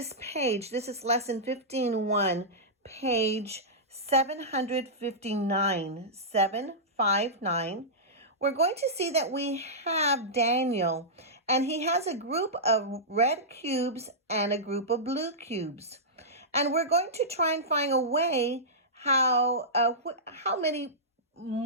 page, this is lesson 15.1, page 759, 759. We're going to see that we have Daniel, and he has a group of red cubes and a group of blue cubes. And we're going to try and find a way how many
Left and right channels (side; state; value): both; normal; correlation -0.14